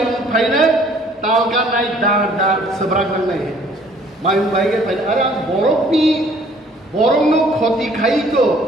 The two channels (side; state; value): both; normal; correlation 0.58